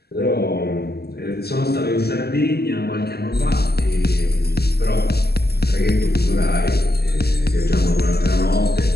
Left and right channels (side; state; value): right; late; 0.46 ms